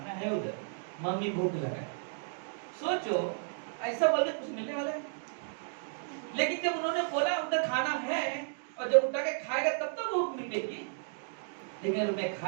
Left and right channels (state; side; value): silent; left; digital silence